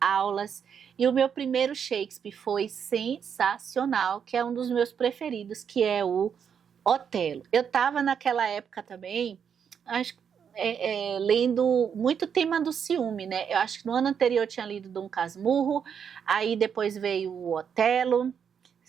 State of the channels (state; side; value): quieter; left; 7.5 dB